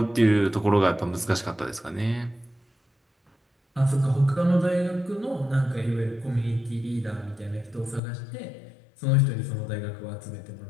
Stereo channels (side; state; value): right; drops out; at 8.0 s